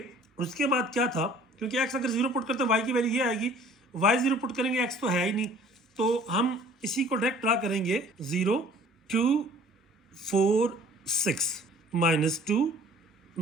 उसके बाद क्या था, क्योंकि x अगर 0 पुट करते हैं y की वैल्यू ये आएगी, y 0 पुट करेंगे x तो है ही नहीं, तो हम इसी को डायरेक्ट ड्रा करेंगे 0 2 4 6 -2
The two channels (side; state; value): both; normal; correlation 0.52